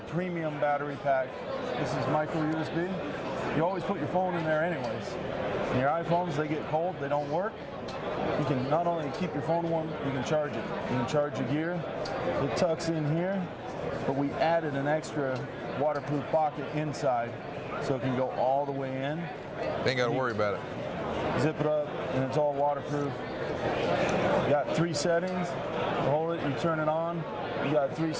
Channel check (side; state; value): both; identical; correlation 1.00